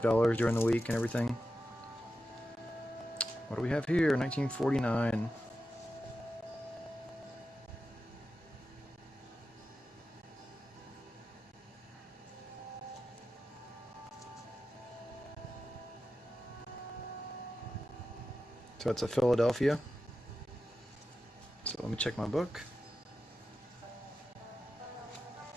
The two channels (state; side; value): normal; both; correlation 0.91